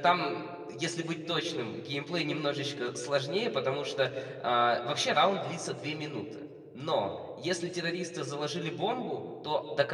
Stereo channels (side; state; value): both; identical; correlation 1.00